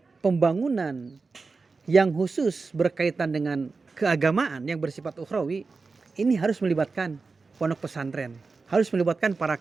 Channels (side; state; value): left; quieter; 4.2 dB